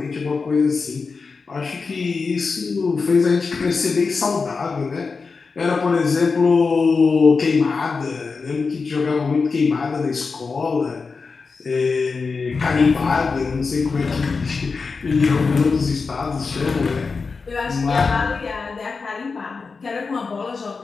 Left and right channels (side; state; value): right; quieter; 4.6 dB